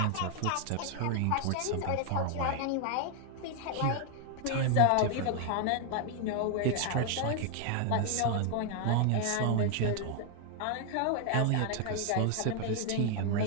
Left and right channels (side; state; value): both; different; correlation 0.00